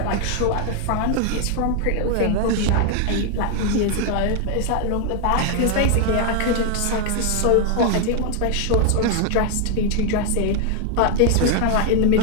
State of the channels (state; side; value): different; both; correlation 0.00